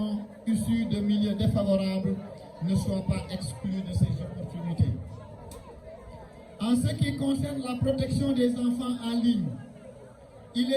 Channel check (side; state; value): both; identical; correlation 1.00